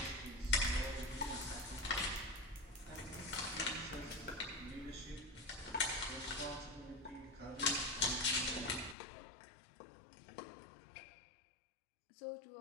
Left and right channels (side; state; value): right; drops out; at 9.0 s